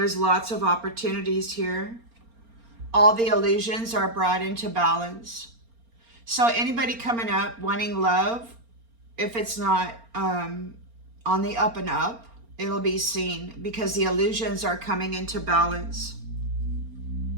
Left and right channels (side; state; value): left; late; 4.3 ms